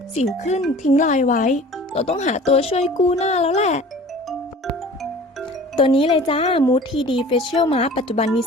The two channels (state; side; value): normal; both; correlation 0.44